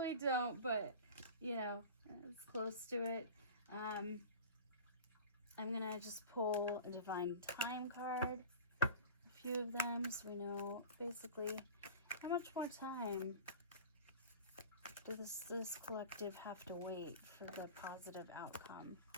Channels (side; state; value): both; inverted; correlation -0.36